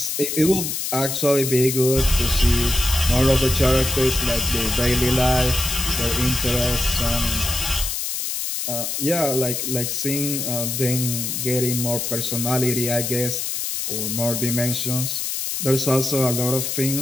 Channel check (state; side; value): noise; left; hiss, 2 dB below the sound